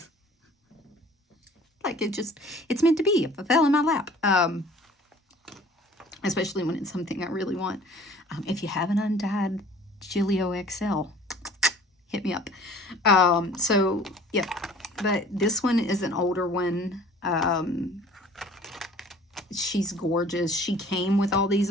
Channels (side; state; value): both; normal; correlation 0.49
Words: Like it's meant to be. If it fell in my lap. Especially when it's something I really want. If you have an undyed Gillio XL, hit me up. So, yeah. But this one is an older one. She's gorgeous. She came with all these